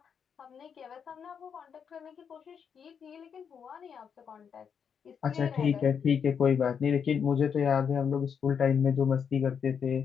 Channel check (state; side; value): quieter; right; 7.1 dB